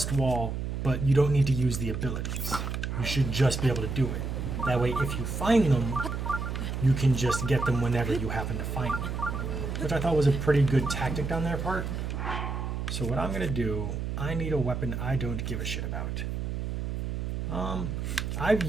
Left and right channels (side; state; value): right; noise; hum, 3 dB below the sound